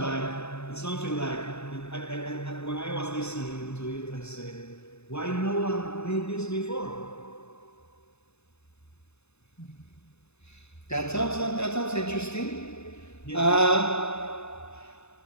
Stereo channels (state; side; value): late; right; 0.80 ms